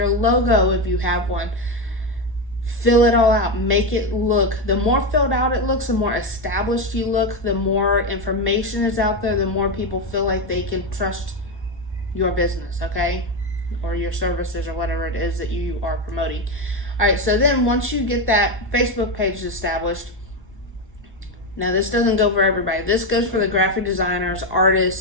logo if you have one. Fill it all out. Make it look, the more filled out it looks, the more established you look, the more information is out there, the more people feel like they can trust your business, okay? Or your services or whatever it is that you are promoting. All right, so then once you get that Facebook page established, now this doesn't go for everybody. This goes for the graphic designers,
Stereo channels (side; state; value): both; normal; correlation 0.11